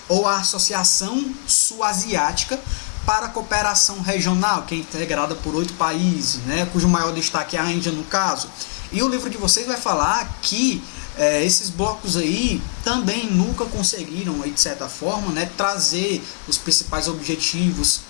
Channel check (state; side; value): silent; right; 65 dB below the other